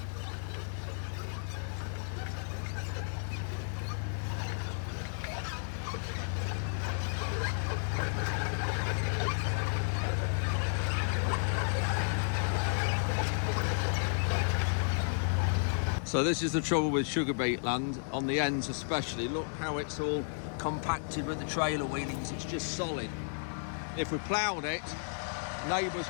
So this is the trouble with sugar beet land, on the ends especially. Look how it's all compacted with the trailer wheelings, it's just solid. If we ploughed it, neighbours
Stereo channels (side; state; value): right; silent; digital silence